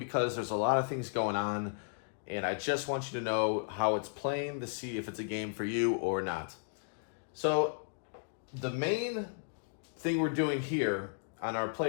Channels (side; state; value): right; silent; digital silence